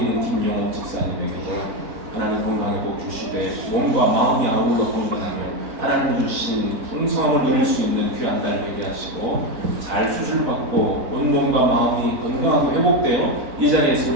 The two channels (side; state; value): left; late; 4.0 ms